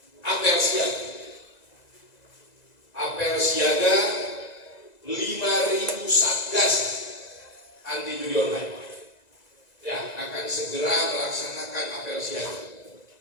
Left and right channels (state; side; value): late; right; 1.9 ms